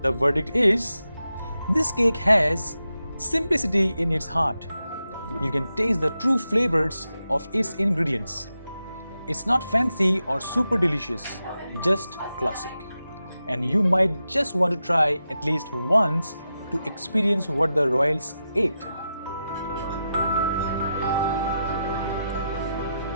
The verdict is, this cake has simplicity in its heart. You can taste the true flavors of its ingredients. It's not fancy or super delicious, just classic. And you might just want to try at least once to experience what the royals ate.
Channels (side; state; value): both; inverted; correlation -0.89